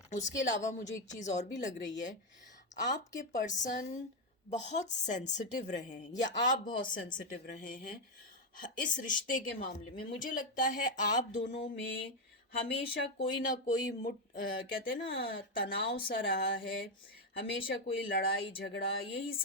उसके अलावा मुझे एक चीज़ और भी लग रही है, आपके पर्सन बहुत सेंसिटिव रहे हैं या आप बहुत सेंसिटिव रहे हैं इस रिश्ते के मामले में। मुझे लगता है आप दोनों में हमेशा कोई ना कोई कहते हैं ना, तनाव सा रहा है। हमेशा कोई लड़ाई झगड़ा, यही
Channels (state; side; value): normal; both; correlation 0.06